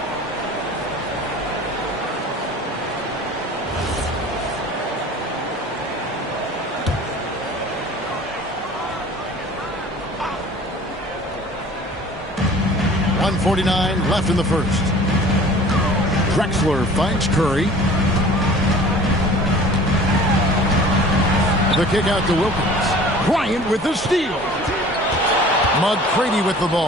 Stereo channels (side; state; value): both; normal; correlation 0.45